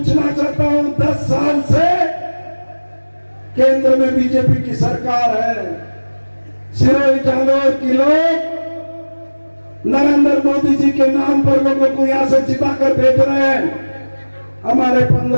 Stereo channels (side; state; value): both; inverted; correlation -1.00